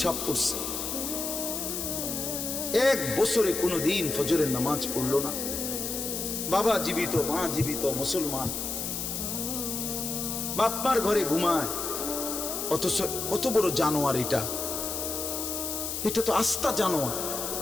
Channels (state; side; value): noise; left; hiss, 3 dB below the sound